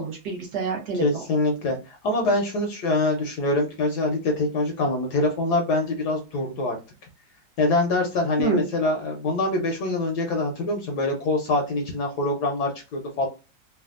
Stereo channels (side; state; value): both; normal; correlation -0.10